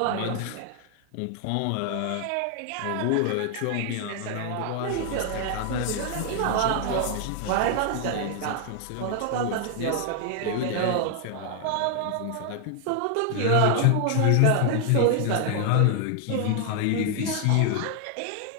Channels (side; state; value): both; different; correlation 0.00